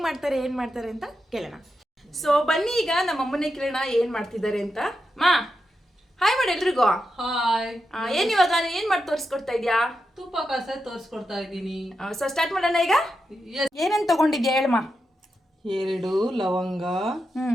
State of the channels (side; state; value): both; normal; correlation 0.87